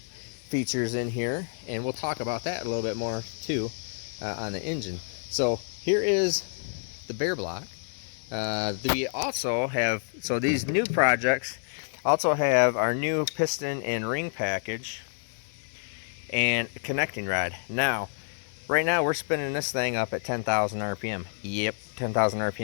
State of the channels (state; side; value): silent; right; 59 dB below the other